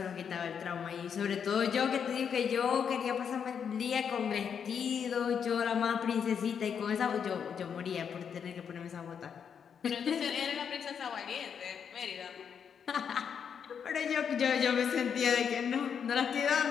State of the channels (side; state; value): right; quieter; 7.3 dB